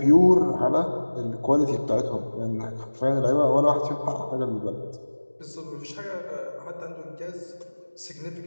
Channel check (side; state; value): both; inverted; correlation -1.00